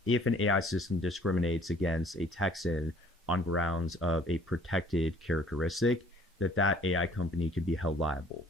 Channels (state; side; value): normal; both; correlation 0.56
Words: if an AI system discriminates against a Texan on grounds of a protected characteristic, that AI company could be held liable.